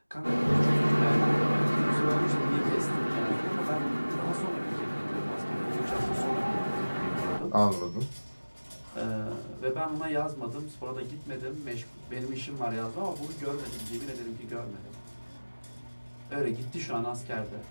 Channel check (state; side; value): inverted; both; correlation -1.00